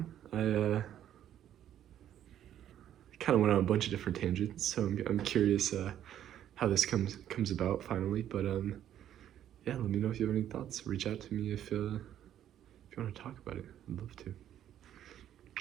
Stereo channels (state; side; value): quieter; left; 10.9 dB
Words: I kind of went on a bunch of different tangents, so I'm curious how this comes about finally. But yeah, let me know if you have any thoughts. Reach out to me if you want to talk about it. I'd love to.